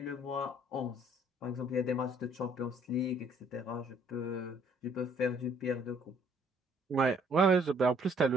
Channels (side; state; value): both; normal; correlation 0.62